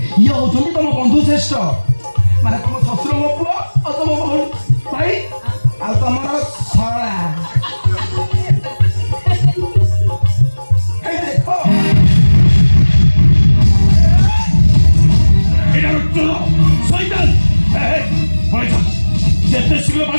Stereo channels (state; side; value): inverted; both; correlation -1.00